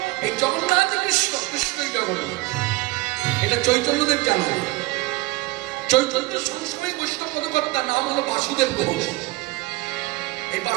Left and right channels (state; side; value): quieter; left; 20.6 dB